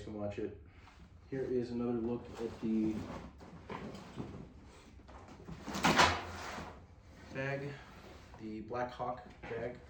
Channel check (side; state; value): both; identical; correlation 1.00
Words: can watch it. Here is another look at the bag, the BLACKHAWK bag.